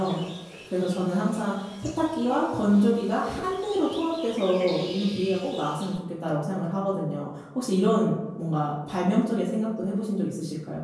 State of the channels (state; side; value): identical; both; correlation 1.00